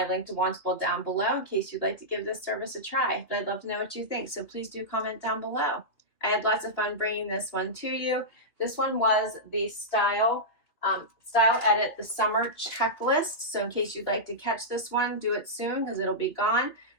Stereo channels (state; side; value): late; right; 2.9 ms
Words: link to Wantable down below in case you'd like to give this service a try. But I'd love to know what you think, so please do comment down below. I had lots of fun bringing this one to you. This one was the Style Edit, the summer checklist. So in case you'd like to catch this one, do it soon because it'll be gone.